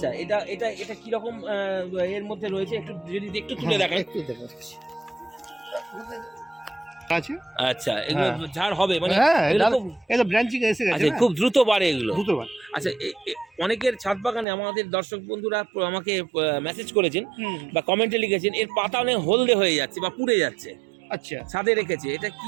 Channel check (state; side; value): drops out; left; at 14.5 s